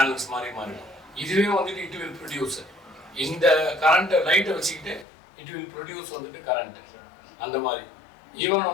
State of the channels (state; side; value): drops out; right; at 5.1 s